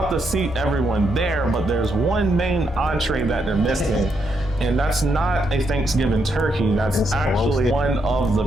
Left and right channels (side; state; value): both; normal; correlation 0.78